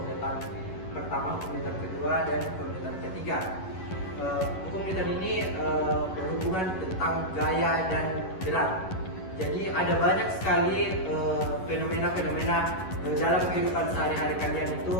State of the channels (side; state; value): right; late; 11 ms